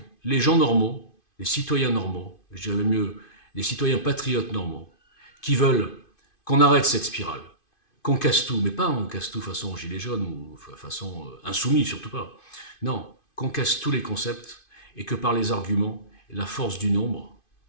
les gens normaux, les citoyens normaux, je dirais même mieux, les citoyens patriotes normaux, qui veulent qu'on arrête cette spirale, qu'on casse tout, mais pas on casse tout façon gilet jaune ou façon insoumis, surtout pas. Non, qu'on casse tous les concepts et que par les arguments, la force du nombre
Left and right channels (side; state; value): right; late; 2.5 ms